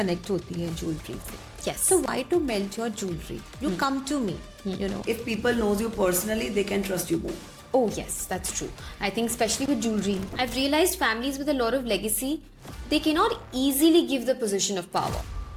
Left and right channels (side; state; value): both; identical; correlation 1.00